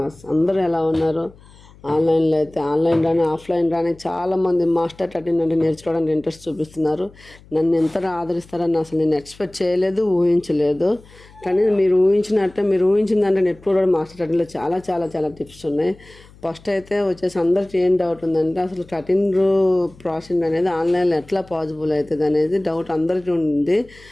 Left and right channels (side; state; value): left; noise; hum, 24 dB below the sound